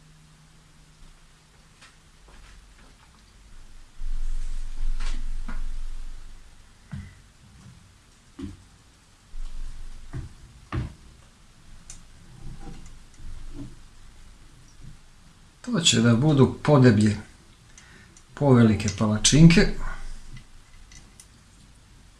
To će da budu podeblje, povelike palačinke.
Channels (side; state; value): both; identical; correlation 1.00